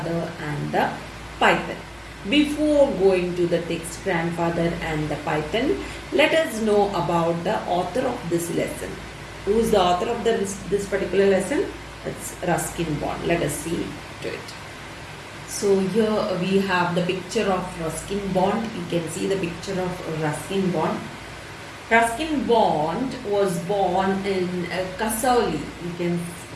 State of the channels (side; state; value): both; identical; correlation 1.00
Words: and the Python. Before going to the text, Grandfather and the Python, let us know about the author of this lesson. Who is the author of this particular lesson? It's Ruskin Bond. Let us see to it. So here we have the picture of Ruskin Bond. You can see the picture of Ruskin Bond. Ruskin Bond was born in Kasauli. You can